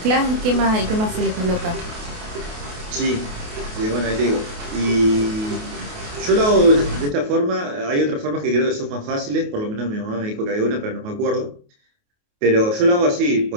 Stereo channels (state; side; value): late; left; 28 ms